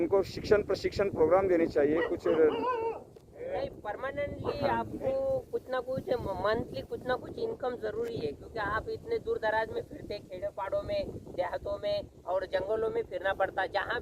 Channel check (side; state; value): both; identical; correlation 1.00